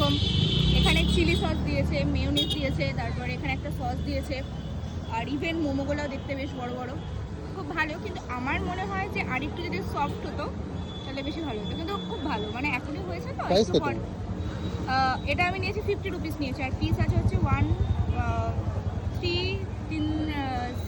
এখানে চিলি সস দিয়েছে, মেয়োনিজ দিয়েছে, তারপরে এখানে একটা সস দিয়েছে, আর ইভেন মোমোগুলোও দেখতে বেশ বড় বড়, খুব ভালো। কিন্তু আমার মনে হয় যে আরেকটু যদি সফট হতো তাহলে বেশি ভালো হতো, কিন্তু খুব ভালো। মানে এখনই হয়েছে তো একটু পর। এটা আমি নিয়েছি 50 রুপিস নিয়েছি, আর পিস আছে হচ্ছে 1 3 3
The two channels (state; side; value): identical; both; correlation 1.00